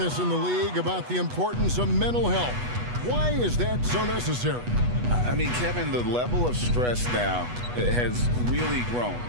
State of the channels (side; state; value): left; late; 8.2 ms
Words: in the league about the importance of mental health. Why is that so necessary? I mean, Kevin, the level of stress now has really grown.